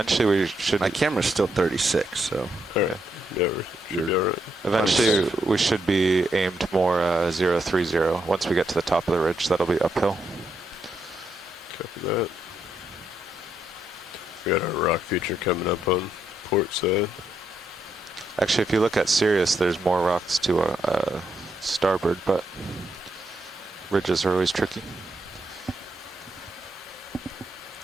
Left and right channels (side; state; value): both; normal; correlation 0.79